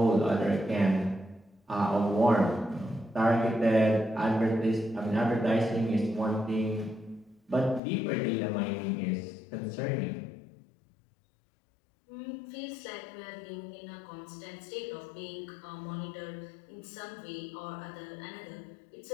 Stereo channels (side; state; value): right; drops out; at 7.8 s